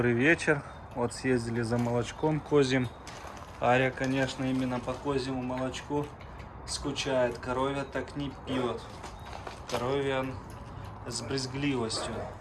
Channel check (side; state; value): both; identical; correlation 1.00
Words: вечер. Вот съездили за молочком козьим. Ария, конечно, именно по козьему молочку скучает. Коровья так не пьет. Коровья с брезгливостью.